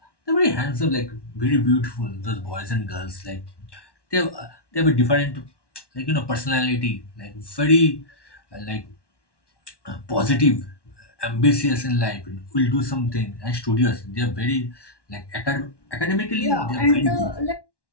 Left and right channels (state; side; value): late; right; 1.1 ms